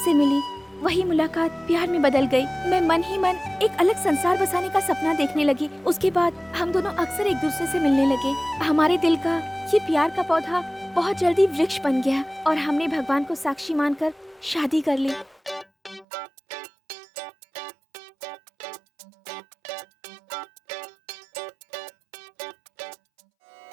मिली। वही मुलाकात प्यार में बदल गई। मैं मन ही मन एक अलग संसार बसाने का सपना देखने लगी। उसके बाद हम दोनों अक्सर एक दूसरे से मिलने लगे। हमारे दिल का ये प्यार का पौधा बहुत जल्दी वृक्ष बन गया और हमने भगवान को साक्षी मानकर शादी कर ली।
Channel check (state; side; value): drops out; left; at 16.1 s